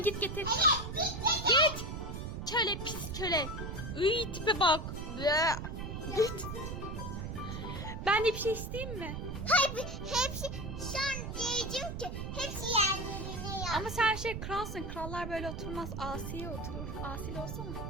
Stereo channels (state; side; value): noise; right; rumble, 6 dB below the sound